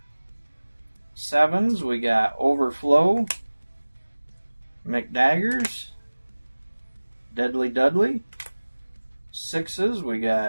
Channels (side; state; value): both; inverted; correlation -1.00